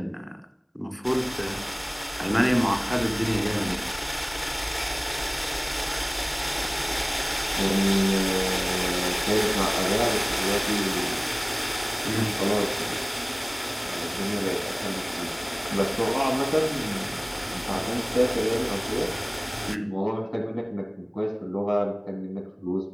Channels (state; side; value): identical; both; correlation 1.00